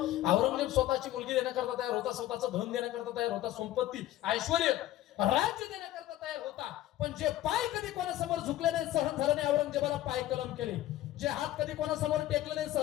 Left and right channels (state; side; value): quieter; right; 14.3 dB